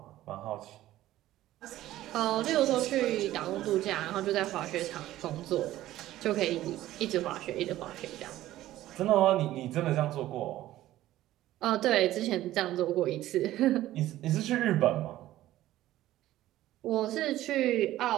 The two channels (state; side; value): quieter; left; 14.7 dB